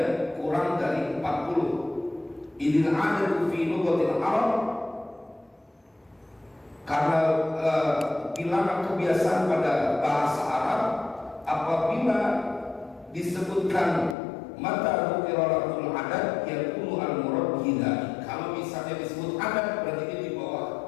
kurang dari 40. Idil adadu fi lughatil Arab, karena bilangan kebiasaan pada bahasa Arab apabila disebutkan mata qira'atul adad yakunu al-murad bihi. Kalau misalnya disebut adad berarti dia di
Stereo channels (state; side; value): drops out; right; at 14.2 s